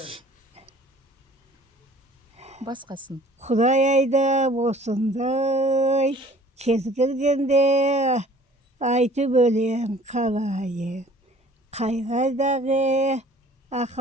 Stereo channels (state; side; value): normal; both; correlation 0.52